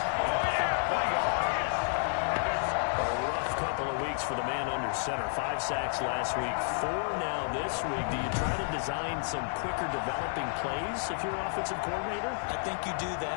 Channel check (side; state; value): right; silent; digital silence